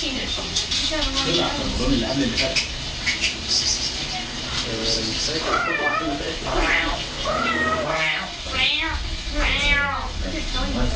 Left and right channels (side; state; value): both; identical; correlation 1.00